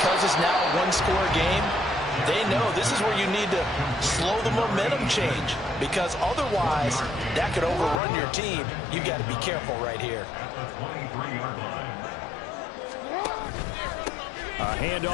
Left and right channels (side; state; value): right; drops out; at 8.0 s